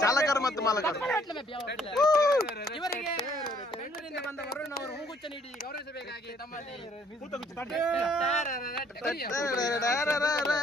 ಚಾಲಕರು ಮತ್ತು ಮಾಲಕರು ಇವರಿಗೆ ಬೆಂಗಳೂರಿನಿಂದ ಬಂದ ವರುಣ್ ಅವರು ಹೂಗುಚ್ಚ ನೀಡಿ ಗೌರವಿಸಬೇಕಾಗಿ ತಮ್ಮಲ್ಲಿ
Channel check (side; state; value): both; normal; correlation 0.63